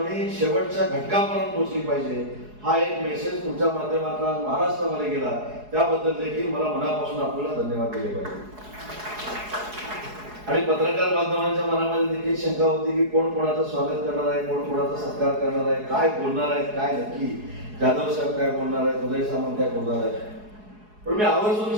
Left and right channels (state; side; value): late; left; 4.7 ms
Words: शेवटच्या घटकापर्यंत पोहोचली पाहिजे. हा एक मेसेज तुमच्या माध्यमातून महाराष्ट्रामध्ये गेला, त्याबद्दल देखील मला मनापासून आपल्याला धन्यवाद दिले पाहिजे. आणि पत्रकार बांधवांच्या मनामध्ये देखील शंका होती की कोण कोणाचं स्वागत करणार आहे, कोण कोणाचा सत्कार करणार आहे, काय बोलणार आहे, काय नक्की जाधव साहेब काय बोलणार आहेत, उदय सामंत काय बोलणार आहेत. पण मी